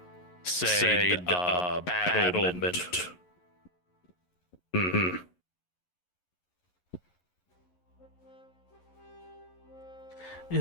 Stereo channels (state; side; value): late; right; 11 ms